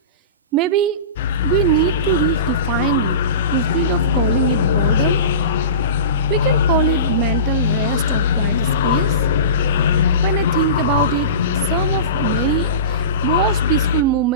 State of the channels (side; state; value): both; inverted; correlation -0.31